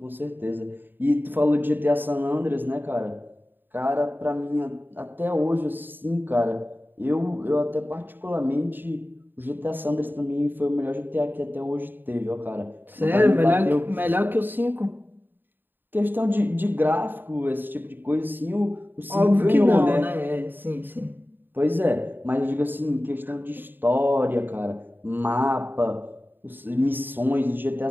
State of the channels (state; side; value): late; left; 0.093 ms